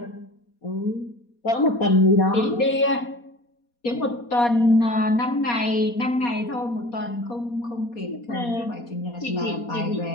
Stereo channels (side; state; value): right; late; 4.2 ms